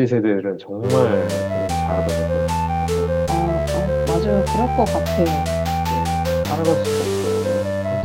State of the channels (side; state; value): both; identical; correlation 1.00